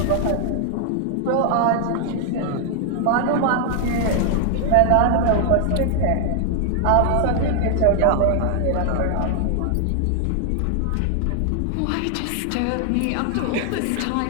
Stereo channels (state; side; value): different; both; correlation 0.00